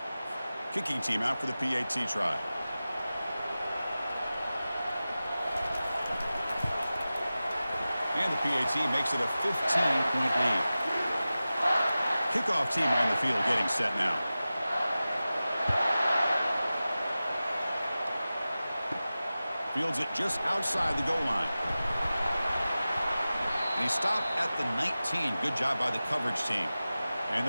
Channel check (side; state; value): both; inverted; correlation -0.96